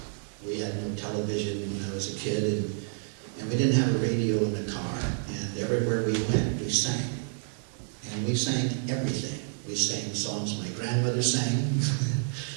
We had no television when I was a kid, and we didn't have a radio in the car, and everywhere we went, we sang. And we sang everything. We sang songs my grandmother sang.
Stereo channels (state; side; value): silent; left; digital silence